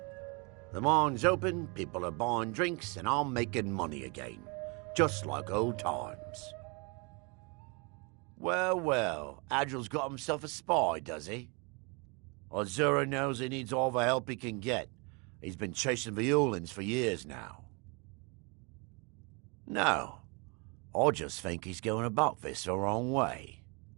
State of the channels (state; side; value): quieter; left; 31.4 dB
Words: The mine's open, people are buying drinks, and I'm making money again, just like old times. Well, well, Agil's got himself a spy, does he? Azura knows he needs all the help he can get. He's been chasing the Ulins for years now. No, I just think he's going about this the wrong way.